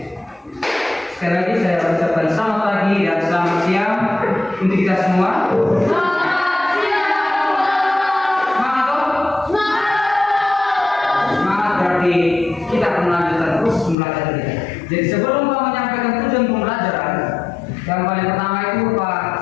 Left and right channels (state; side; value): drops out; right; at 14.0 s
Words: Sekali lagi saya ucapkan selamat pagi dan selamat siang untuk kita semua. Semangat toh? Semangat berarti kita akan melanjutkan terus pembelajaran kita. Jadi sebelum Pak menyampaikan tujuan pembelajaran, yang paling pertama itu Pak